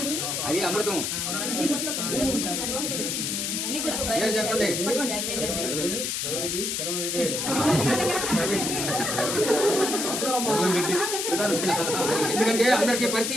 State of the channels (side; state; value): left; noise; hiss, 1 dB below the sound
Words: అది అమృతం. చెప్పండి. ఎందుకంటే అందరికి